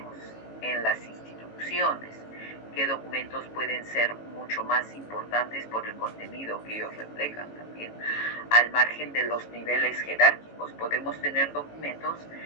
en las instituciones qué documentos pueden ser mucho más importantes por el contenido que ellos reflejan también. Al margen de los niveles jerárquicos, podemos tener documentos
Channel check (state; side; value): late; right; 18 ms